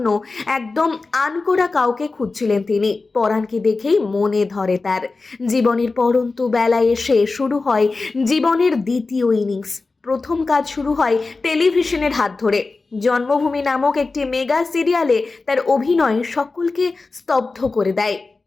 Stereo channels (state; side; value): quieter; right; 3.8 dB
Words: একদম আনকোড়া কাউকে খুঁজছিলেন তিনি। পরাণকে দেখেই মনে ধরে তার। জীবনের পরন্তু বেলায় এসে শুরু হয় জীবনের দ্বিতীয় ইনিংস। প্রথম কাজ শুরু হয় টেলিভিশনের হাত ধরে। জন্মভূমি নামক একটি মেগা সিরিয়ালে তার অভিনয় সকলকে স্তব্ধ করে দেয়।